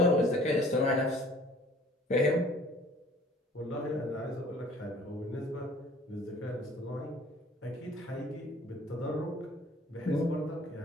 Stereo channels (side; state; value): both; normal; correlation 0.52